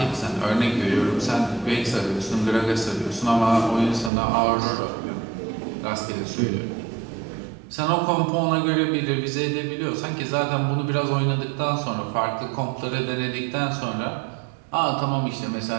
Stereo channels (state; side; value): drops out; left; at 4.1 s